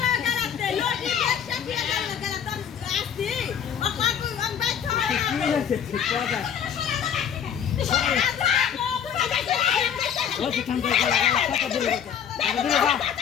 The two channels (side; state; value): right; quieter; 8.3 dB